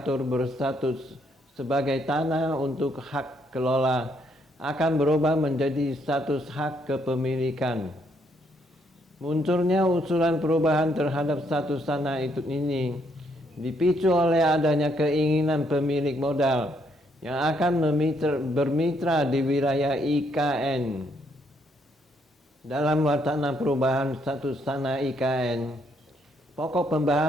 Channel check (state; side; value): normal; both; correlation 0.72